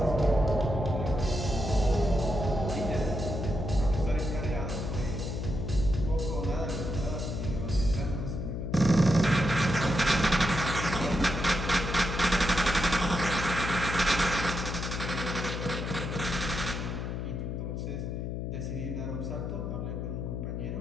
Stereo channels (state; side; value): noise; left; hum, 4 dB below the sound